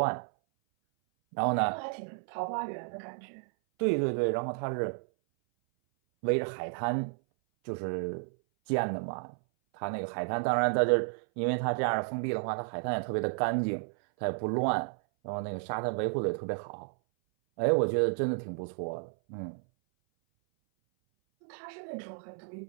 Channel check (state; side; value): silent; left; 57 dB below the other